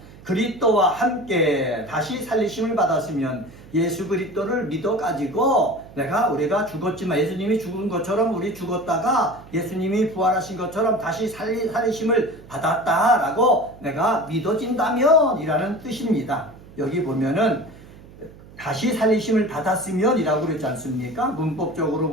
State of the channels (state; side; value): noise; right; hum, 20 dB below the sound